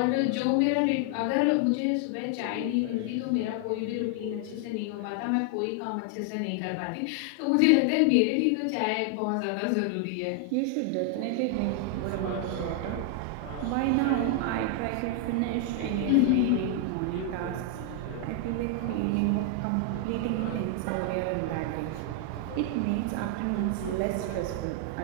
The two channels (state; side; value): different; both; correlation 0.00